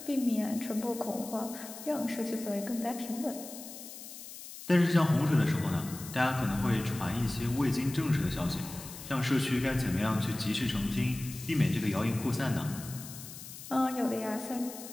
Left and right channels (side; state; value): left; noise; hiss, 13 dB below the sound